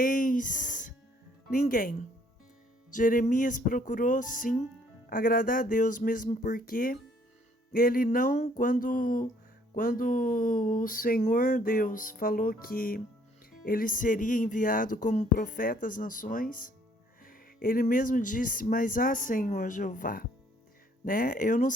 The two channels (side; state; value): both; normal; correlation 0.63